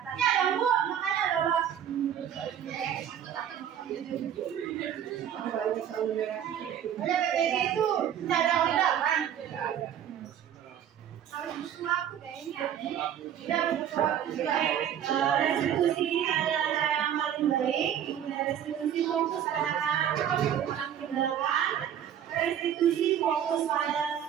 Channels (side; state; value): left; quieter; 9.7 dB